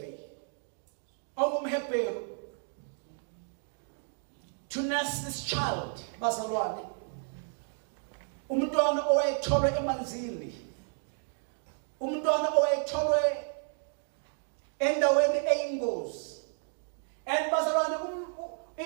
ongumHebheru to nurse this child bazalwane. Umntwana owayetholwe emanzini, umntwana owayetholwe endaweni eyingozi. And bazalwane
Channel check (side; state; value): left; silent; 56 dB below the other